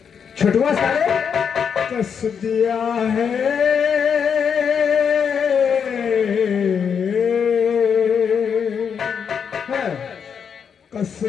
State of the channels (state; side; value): quieter; right; 7.0 dB